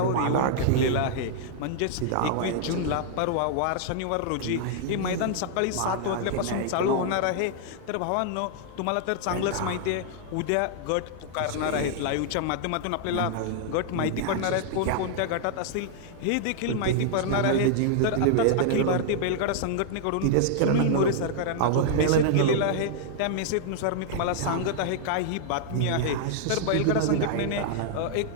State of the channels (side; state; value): both; different; correlation -0.01